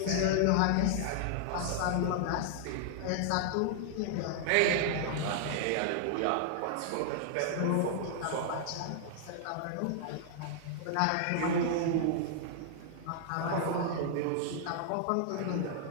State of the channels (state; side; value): different; both; correlation -0.01